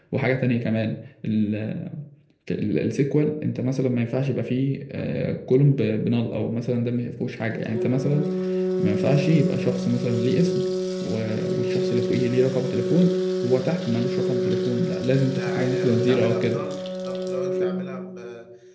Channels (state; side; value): identical; both; correlation 1.00